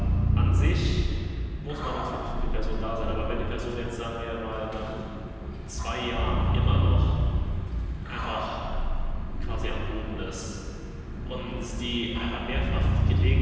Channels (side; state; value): both; identical; correlation 1.00